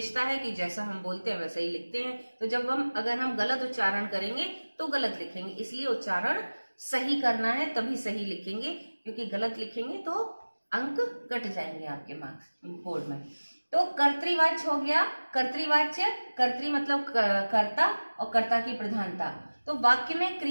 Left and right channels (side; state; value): both; inverted; correlation -1.00